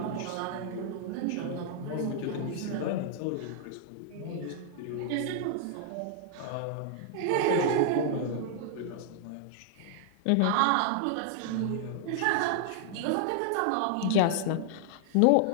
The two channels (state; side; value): different; both; correlation -0.01